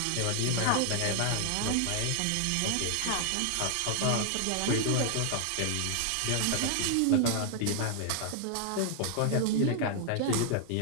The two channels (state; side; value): different; both; correlation 0.00